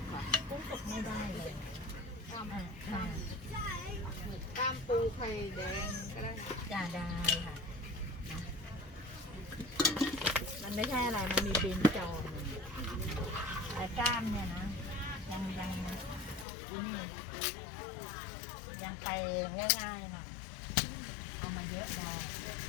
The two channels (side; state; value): right; drops out; at 16.4 s